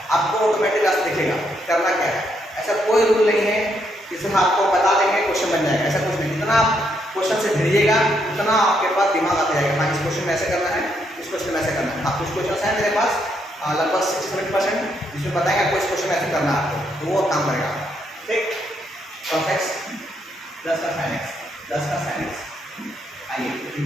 आपको ऑटोमेटिक रास्ता दिखेगा। करना क्या है, ऐसा कोई रूल नहीं है कि सिर्फ आपको बता देंगे क्वेश्चन बन जाएगा, ऐसा कुछ नहीं। जितना आप क्वेश्चन से भिड़िएगा उतना आपके पास दिमाग आता जाएगा। हाँ इस क्वेश्चन में ऐसे करना है, इस क्वेश्चन में ऐसे करना है। हाँ कुछ क्वेश्चन है मेरे पास लगभग 60-70% जिसमें बताएंगे आपको इस क्वेश्चन में ऐसे करना है आपको, तो वो काम करेगा। ठीक, cos x प्लस का sin x। आइए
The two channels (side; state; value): both; normal; correlation 0.76